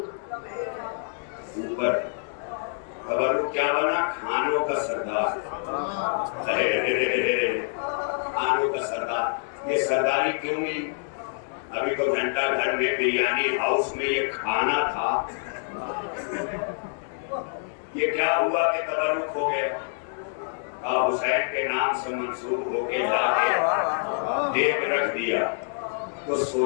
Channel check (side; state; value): right; silent; digital silence